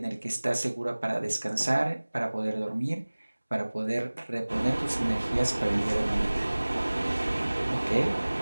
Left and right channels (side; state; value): both; inverted; correlation -1.00